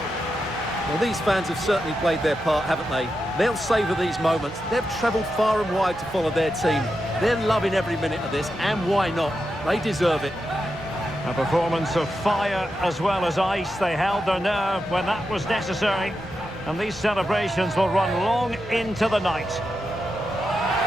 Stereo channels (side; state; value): both; normal; correlation 0.88